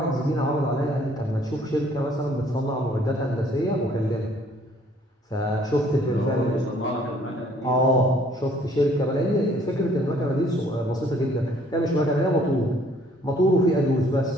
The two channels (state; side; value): normal; both; correlation 0.60